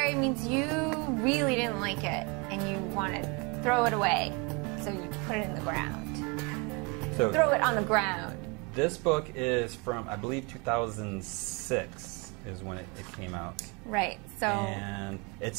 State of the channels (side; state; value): left; quieter; 30.4 dB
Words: means you really didn't like it and you want to throw it away. So you put it in the ground. So throw it on the ground. This book is from, I believe, 2006 is when it came out. Right. So. And